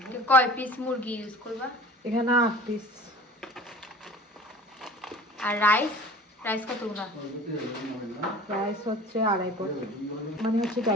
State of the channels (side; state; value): both; normal; correlation 0.42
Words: কয় পিস মুরগি ইউজ করবা? এখানে 8 পিস। আর রাইস কতগুলা? রাইস হচ্ছে 2.5 পট, মানে হচ্ছে